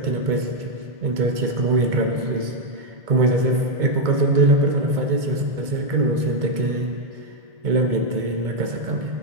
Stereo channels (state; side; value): late; left; 2.2 ms